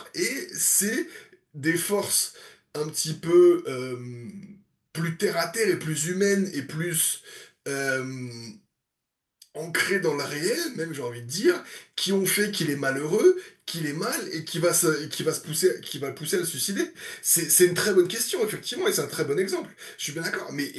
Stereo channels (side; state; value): both; identical; correlation 1.00